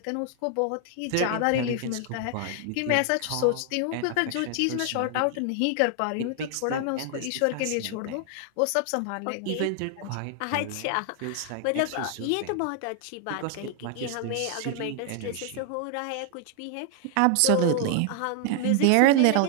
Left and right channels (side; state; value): both; different; correlation 0.00